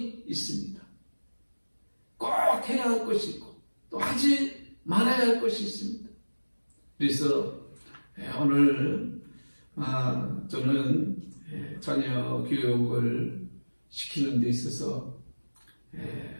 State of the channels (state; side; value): inverted; both; correlation -1.00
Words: 있습니다. 꼭 해야 할 것이 있고 또 하지 말아야 할 것이 있습니다. 그래서 오늘 저는 자녀 교육을 시키는 데 있어서